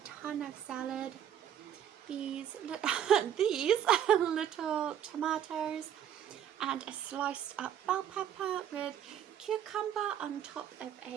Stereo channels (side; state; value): left; quieter; 9.7 dB